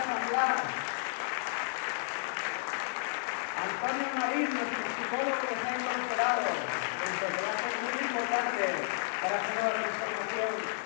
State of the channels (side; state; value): right; silent; 56 dB below the other